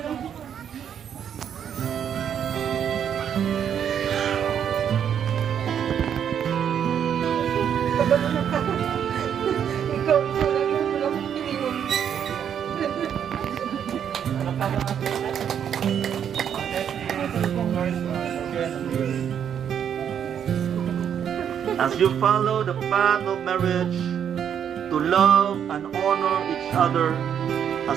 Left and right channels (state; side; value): quieter; left; 8.6 dB